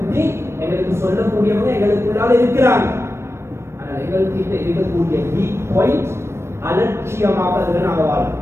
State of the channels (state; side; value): late; left; 0.13 ms